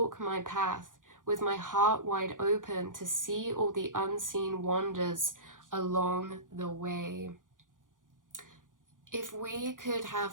my path with my heart wide open to see all the unseen wonders along the way. If we could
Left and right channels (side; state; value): left; late; 0.88 ms